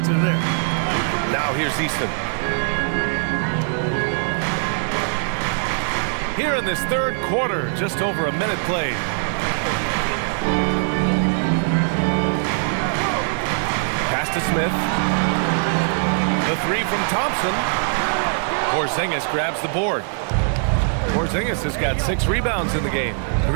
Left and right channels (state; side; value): silent; left; 64 dB below the other